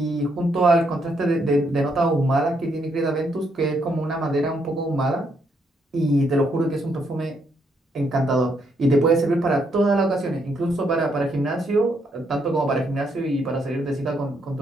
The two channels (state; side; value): normal; both; correlation 0.75